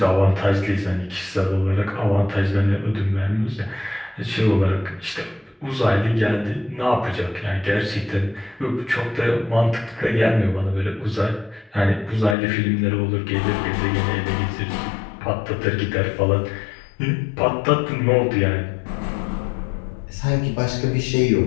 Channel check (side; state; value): right; drops out; at 12.4 s